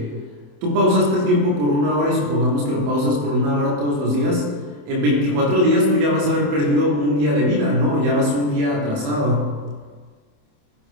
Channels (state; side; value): late; left; 27 ms